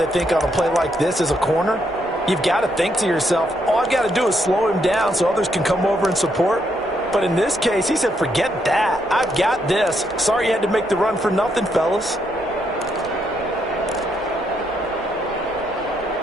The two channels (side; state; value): both; normal; correlation 0.76